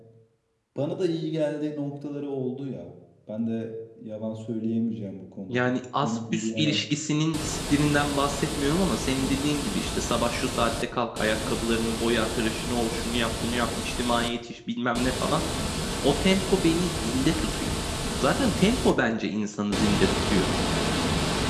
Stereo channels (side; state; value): both; identical; correlation 1.00